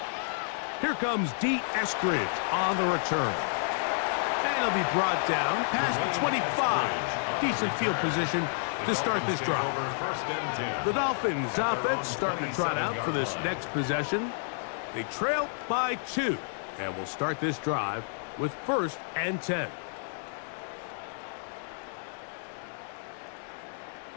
Here comes D. Eskridge on the return. And he'll be brought down past the 25. Decent field position to start this drive. The Dolphins offense starting to trot out for this next possession. They trail by 2. And we'll start this drive with 1st and 10.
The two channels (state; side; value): silent; right; digital silence